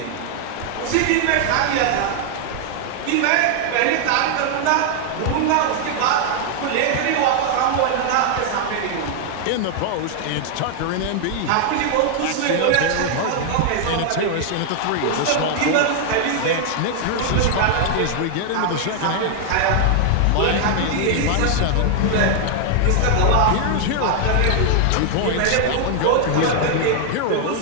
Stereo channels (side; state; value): both; different; correlation 0.00